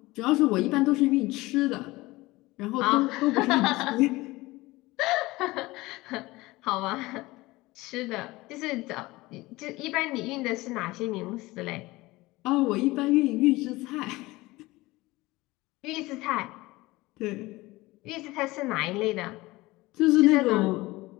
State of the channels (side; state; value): right; quieter; 20.3 dB